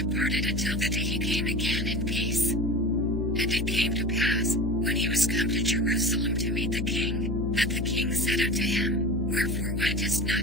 until the day he came again in peace. And it came to pass, when he was come to Jerusalem to meet the king, that the king said unto him, Wherefore wentest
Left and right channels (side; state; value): left; noise; hum, 1 dB below the sound